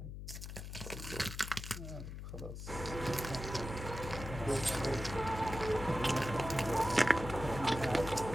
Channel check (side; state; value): left; noise; hum, 9 dB below the sound